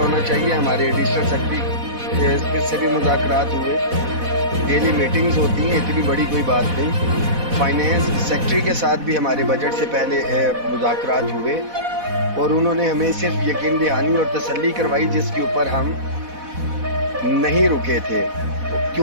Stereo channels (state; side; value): late; left; 4.1 ms